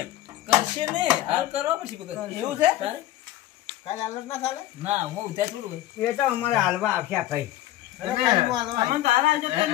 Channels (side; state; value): right; quieter; 14.3 dB